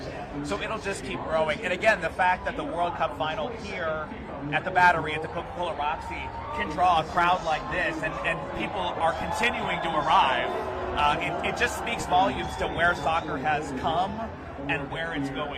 so it'll just keep growing. And again, the fact that the World Cup final here at the Battery, at the Coca-Cola Roxy, can draw a crowd like this, and people are continuing to arrive, it just speaks volumes to where soccer has come and where it's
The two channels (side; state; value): both; identical; correlation 1.00